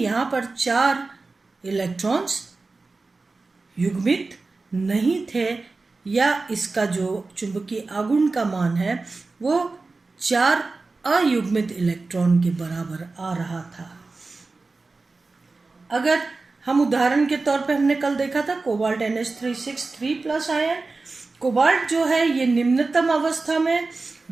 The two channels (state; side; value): quieter; left; 3.7 dB